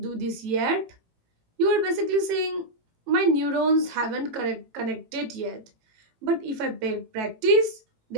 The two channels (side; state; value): left; late; 18 ms